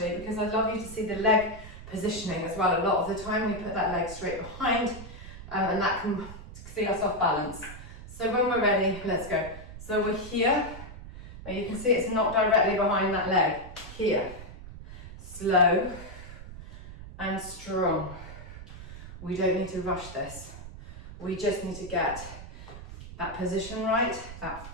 because I'd love you to see the leg positioning as well. A lot of the time we put that leg straight behind and that can see us off balance. So when we're ready, let's go. So we're here. Now you can see it's not directly behind that leg. Here. Slow and strong. We don't need to rush this. We just need to get that position right, that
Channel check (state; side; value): noise; right; rumble, 14 dB below the sound